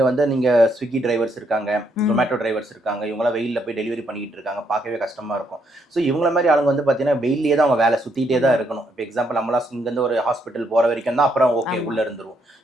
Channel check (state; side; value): normal; both; correlation 0.74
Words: நீங்கள் ஸ்விக்கி டிரைவர்ஸ் இருக்காங்க, ஜொமேட்டோ டிரைவர்ஸ் இருக்காங்க, இவங்களாம் வெயிலில் போய் டெலிவரி பண்ணிக்கிட்டு இருக்காங்க, பார்க்கவே கஷ்டமாக இருக்கும். ஸோ இவங்கள மாதிரி ஆளுங்க வந்து பார்த்தீங்கன்னா வெயிலே தான் அவங்க வேலை சுற்றிட்டே தான் இருக்கணும். இப்போ எக்ஸாம்பிள் நம்மளாம் இங்கேருந்து ஒரு ஹாஸ்பிட்டல் போகிற வரைக்கும் தான், அப்புறம் ஓகே உள்ளே இருந்துருவோம்.